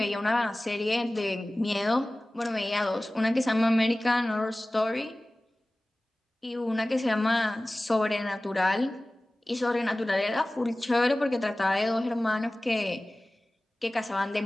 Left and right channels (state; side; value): normal; both; correlation 0.98